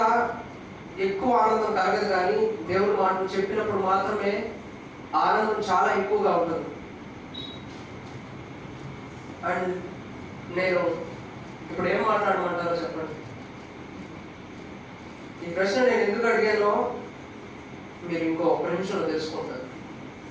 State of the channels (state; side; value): identical; both; correlation 1.00